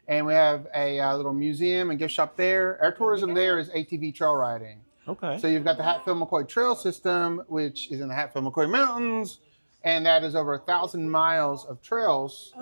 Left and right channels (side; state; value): both; inverted; correlation -1.00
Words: And we have a little museum and gift shop there. Our tourism there is ATV trail riding. Okay. So you've got the Hatfield McCoy Trail System, which is in the Hatfield McCoy Mountains. And that is over 1,000 miles of trails,